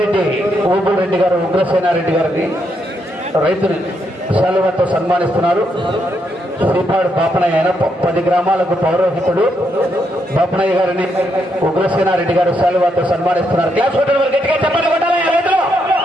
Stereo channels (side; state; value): both; normal; correlation 0.78